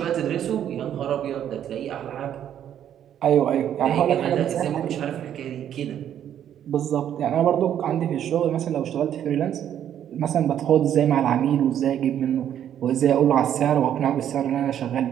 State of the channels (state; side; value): quieter; left; 10.1 dB